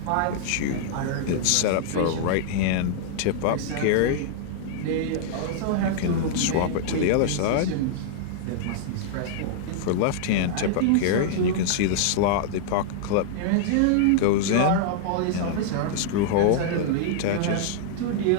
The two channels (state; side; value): different; both; correlation -0.01